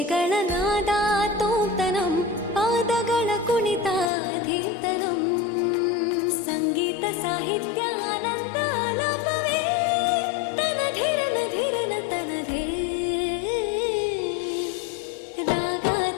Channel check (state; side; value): drops out; right; at 4.1 s